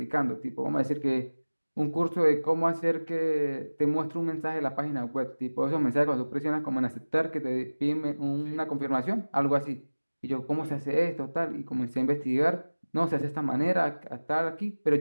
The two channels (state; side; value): inverted; both; correlation -1.00